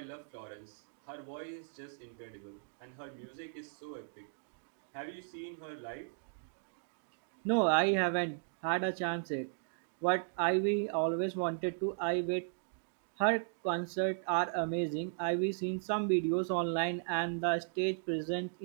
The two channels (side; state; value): left; silent; digital silence